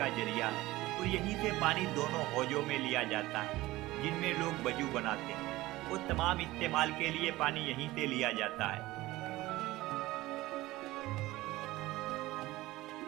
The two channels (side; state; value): left; quieter; 18.2 dB